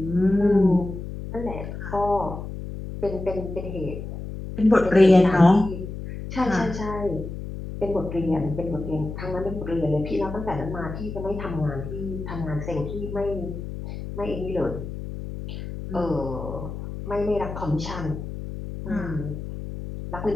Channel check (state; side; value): noise; left; hum, 8 dB below the sound